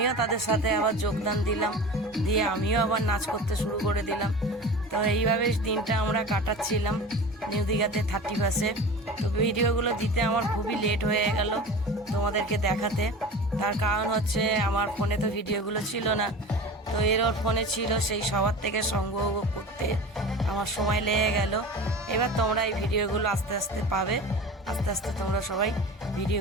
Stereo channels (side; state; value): both; normal; correlation 0.35